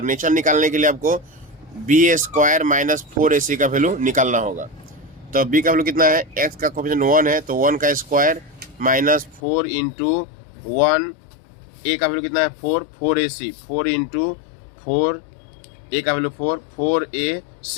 निकालने के लिए आपको b² - 4ac का वैल्यू निकालना होगा। तो b का वैल्यू कितना है, x का कोएफिशिएंट 1 है, तो 1 का स्क्वायर -4 × 1, a का वैल्यू कितना है 4ac, 4 × 4, a का वैल्यू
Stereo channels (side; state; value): right; drops out; at 9.4 s